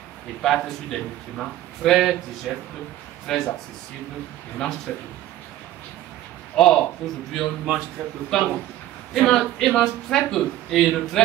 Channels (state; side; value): quieter; left; 13.8 dB